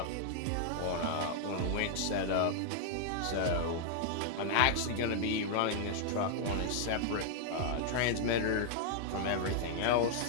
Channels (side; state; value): both; different; correlation 0.00